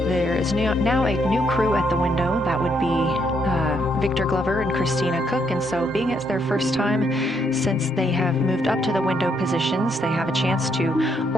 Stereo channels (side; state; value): both; normal; correlation 0.74